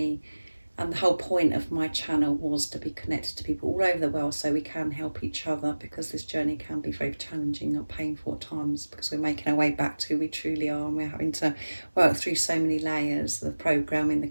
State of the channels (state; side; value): inverted; both; correlation -1.00